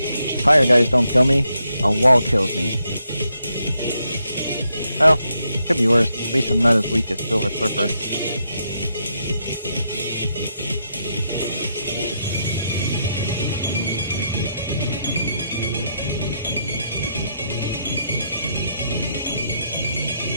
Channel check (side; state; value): both; inverted; correlation -0.80